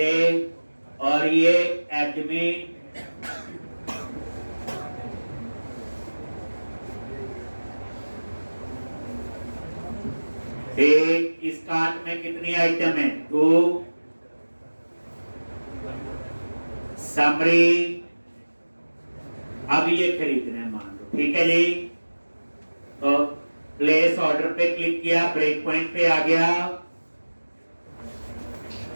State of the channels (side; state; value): both; inverted; correlation -1.00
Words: और ये एडमिन एक। इस कार्ट में कितनी आइटम है? 2। समरी, अब ये खरीदना है मान लो, ठीक है जी। तो प्लेस ऑर्डर पे क्लिक किया, ब्रेक पॉइंट पे आ गया।